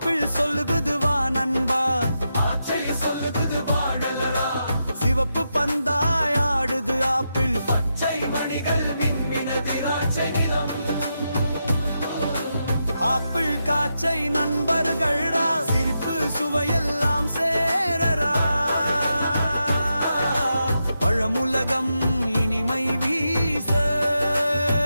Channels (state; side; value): inverted; both; correlation -0.85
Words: சொல்லுகுது வா நண்பா ஆச்சை சொல்லுகுது வாழலரா சிவப்பு பந்தாயாடுது ஆப்பிள் பச்சை மணிகள் மின்மின திராட்சை நிலம் ஆப்பிள் காய்ச்சை நண்பர்கள் சிரிப்பு சுவையெல்லாம் சேரரா பழமுலகம் இனிமை வீச